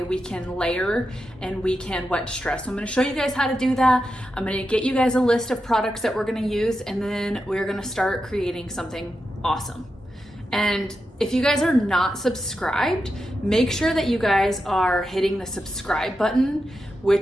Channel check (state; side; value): normal; both; correlation 0.88